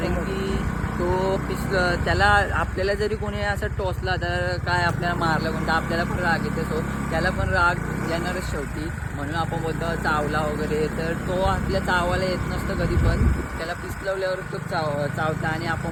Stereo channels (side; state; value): both; identical; correlation 1.00